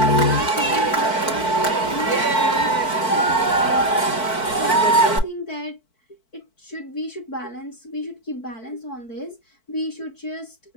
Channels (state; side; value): late; right; 4.5 ms